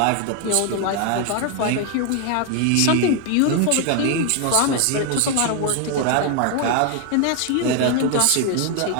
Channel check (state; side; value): different; both; correlation 0.00